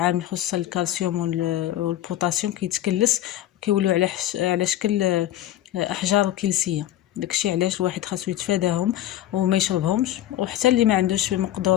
خصوصا الكالسيوم والبوتاسيوم كيتكلس وكيولوا على شكل احجار كلسيه. داكشي علاش الواحد خاصو يتفاداهم وما يشربهمش. وحتى اللي ما عندوش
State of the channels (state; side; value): quieter; right; 13.0 dB